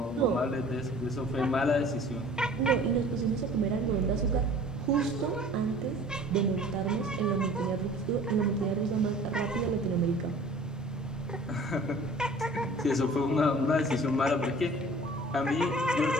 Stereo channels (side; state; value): both; normal; correlation 0.47